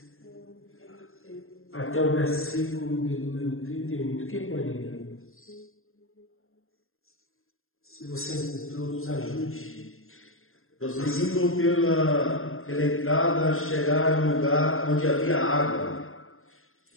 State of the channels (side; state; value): right; late; 0.61 ms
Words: até o versículo de número 38. Quem pode ler? Se você encontrou, nos ajude. Prosseguindo pela entrada, chegaram a um lugar onde havia água.